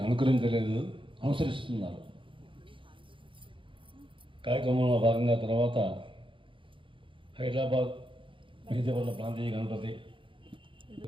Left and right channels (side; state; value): left; late; 0.25 ms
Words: అనుకరించలేదు, అనుసరిస్తున్నారు. కార్యక్రమంలో భాగంగా తర్వాత హైదరాబాద్ మెహదీపట్ల ప్రాంతీయ గణపతి